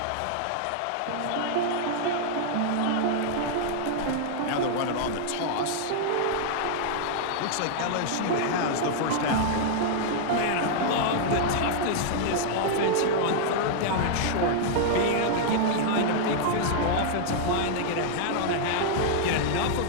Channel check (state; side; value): different; both; correlation -0.01